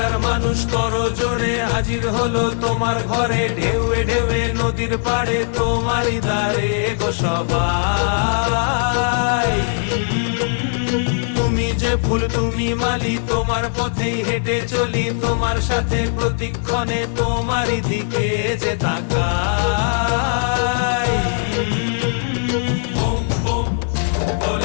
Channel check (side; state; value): right; silent; digital silence